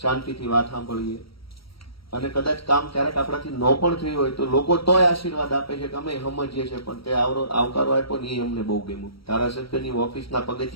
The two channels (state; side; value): late; right; 0.75 ms